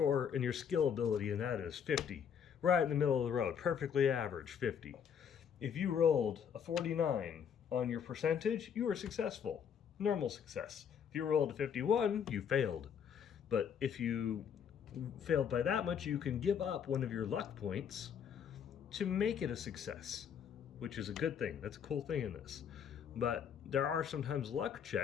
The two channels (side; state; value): right; quieter; 7.8 dB